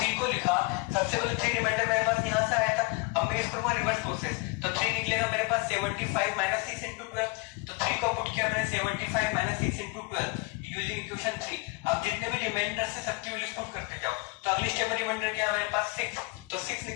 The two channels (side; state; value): right; quieter; 27.3 dB